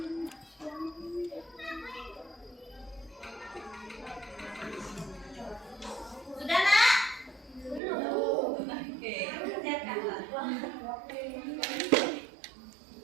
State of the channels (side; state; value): left; drops out; at 7.8 s